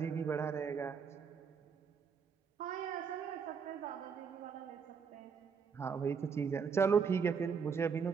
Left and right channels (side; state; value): left; quieter; 6.2 dB